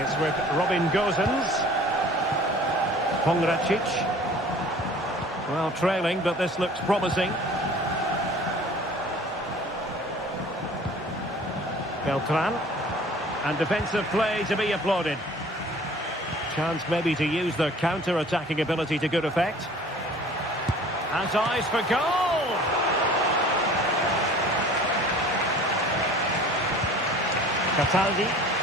with Robin Gozens. Pongracic. Well, trailing, but this looks promising. Beltran. And defensive play to be applauded. Chance maybe to use their counter-attacking ability to good effect. Has eyes for goal! Cataldi.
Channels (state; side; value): normal; both; correlation 0.47